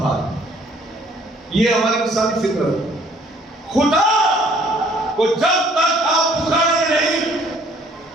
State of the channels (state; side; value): normal; both; correlation 0.59